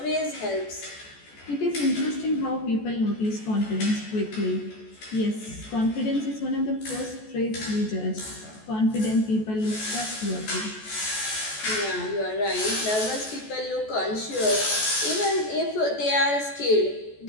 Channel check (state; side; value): late; right; 14 ms